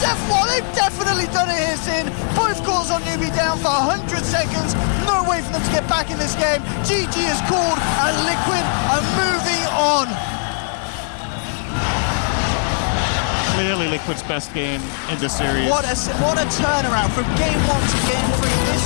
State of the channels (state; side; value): silent; right; digital silence